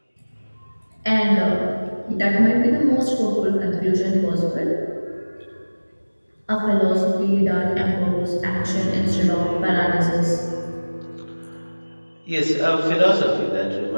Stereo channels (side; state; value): both; inverted; correlation -1.00